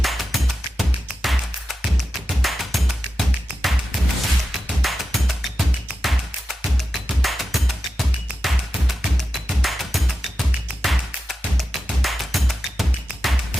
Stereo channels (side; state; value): both; normal; correlation 0.91